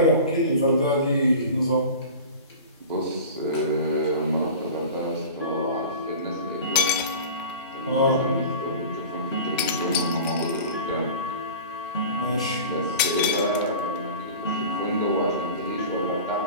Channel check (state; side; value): inverted; both; correlation -0.36